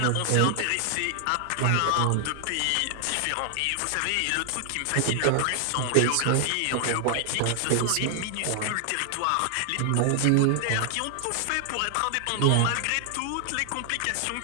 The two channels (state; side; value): different; both; correlation 0.00